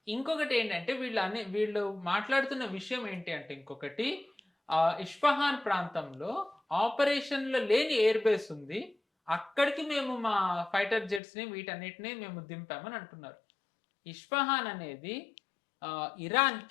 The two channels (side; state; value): right; drops out; at 11.2 s